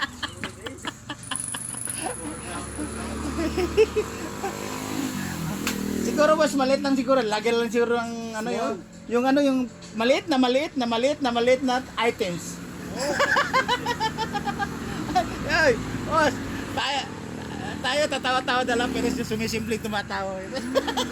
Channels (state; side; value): identical; both; correlation 1.00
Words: Siguro mas maliit lang siguro. Lagi lang siguro ang ano yung ano yung maliit na items. Ay, boss, tayo tatawa-tawa na lang pero sumisimpleng tumatawa.